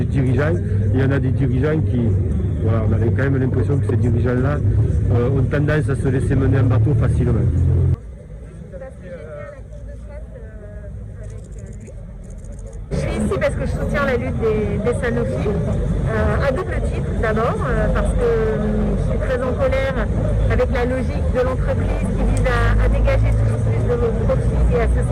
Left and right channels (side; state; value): both; identical; correlation 1.00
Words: Il y en a des dirigeants qui, voilà, on avait quand même l'impression que ces dirigeants-là ont tendance à se laisser mener en bateau facilement. Je suis ici parce que je soutiens la lutte des Sanofi, à double titre d'abord, parce que je suis très en colère avec la logique de l'entreprise qui vise à dégager toujours plus de profits et à se